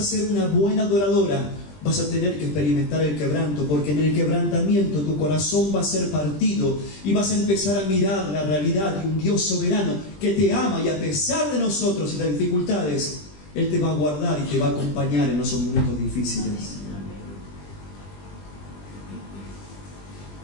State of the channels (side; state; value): right; late; 20 ms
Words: ser una buena adoradora, vas a tener que experimentar el quebranto, porque en el quebrantamiento tu corazón va a ser partido y vas a empezar a mirar la realidad de un Dios soberano que te ama, y a pesar de nosotros y las dificultades, Él te va a guardar y te va a acompañar en esos momentos difíciles.